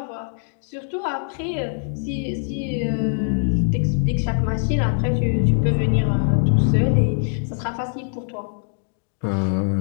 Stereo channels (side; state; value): right; silent; 64 dB below the other